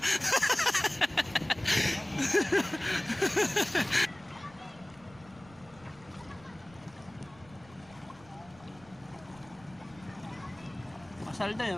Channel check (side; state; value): right; noise; rumble, 24 dB below the sound